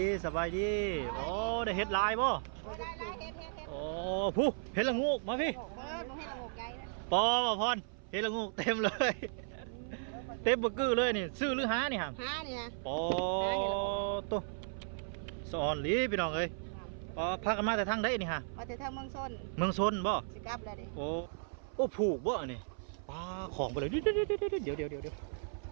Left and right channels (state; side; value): silent; left; 54 dB below the other